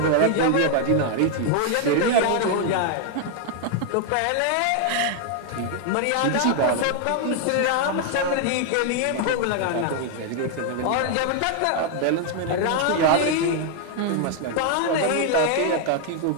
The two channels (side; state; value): both; different; correlation 0.00